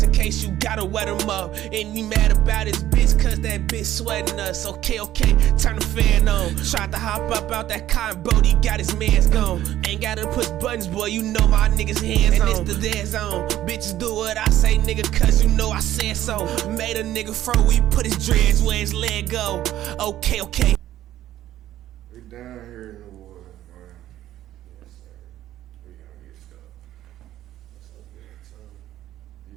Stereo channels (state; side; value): quieter; left; 13.1 dB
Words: in case you gotta wet them up. And you mad about his bitch, cause that bitch sweating us. Okay, turn the fan on. Tried to hop up out that car, and Brody got his mans gone. Ain't gotta push buttons, boy, you know my niggas hands on. And it's the dead zone. Bitches do what I say, nigga, cause you know I said so. Made a nigga fro, we put his dreads where his leg go. Okay. We down here in the woods, man. Yes, sir. We gonna get stuck. What's up, man? You